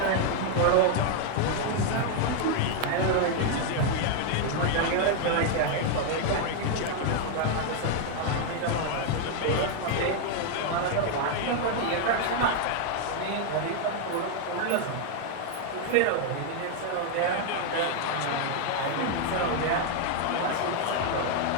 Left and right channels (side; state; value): both; different; correlation 0.00